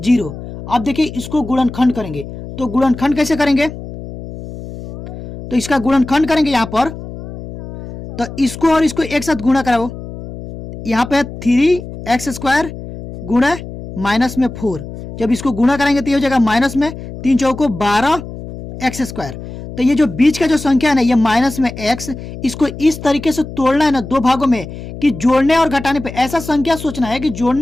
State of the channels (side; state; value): left; noise; hum, 12 dB below the sound